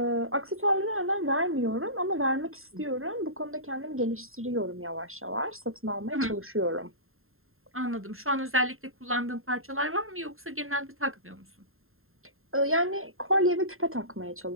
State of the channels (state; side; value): late; left; 0.61 ms